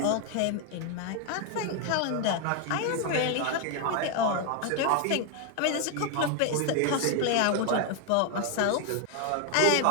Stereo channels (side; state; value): both; different; correlation 0.01